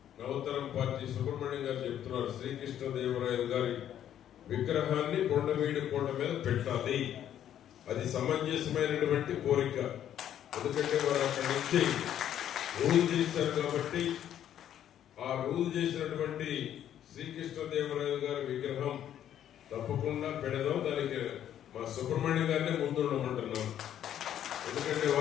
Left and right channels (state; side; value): quieter; right; 10.6 dB